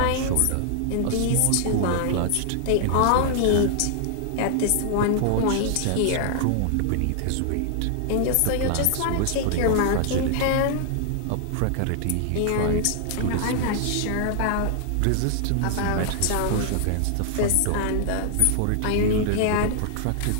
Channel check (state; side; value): different; both; correlation 0.00